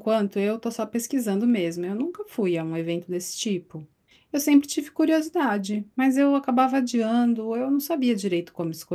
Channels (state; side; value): identical; both; correlation 1.00